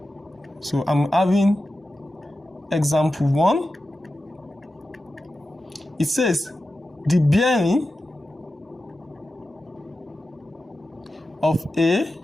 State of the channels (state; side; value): normal; both; correlation 0.92